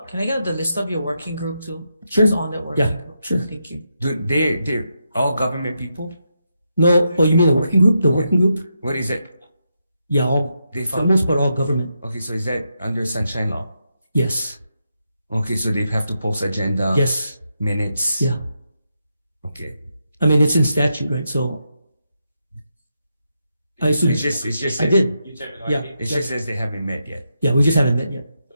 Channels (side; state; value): both; inverted; correlation -0.83